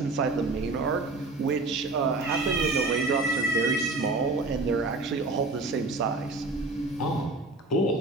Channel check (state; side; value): quieter; left; 3.3 dB